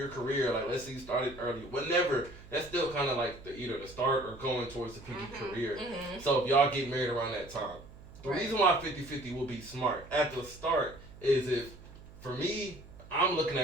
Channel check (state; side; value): noise; right; hum, 19 dB below the sound